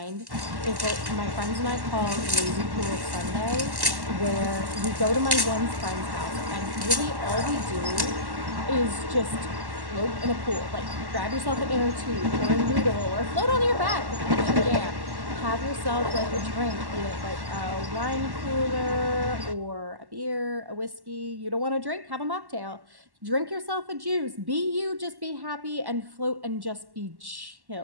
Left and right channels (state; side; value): late; left; 1.1 ms